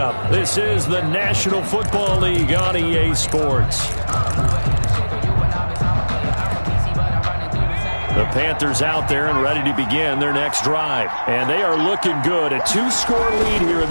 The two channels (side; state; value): both; inverted; correlation -1.00